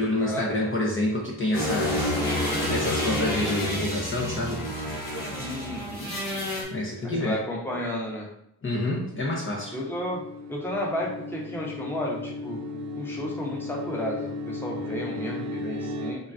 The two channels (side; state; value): both; normal; correlation 0.30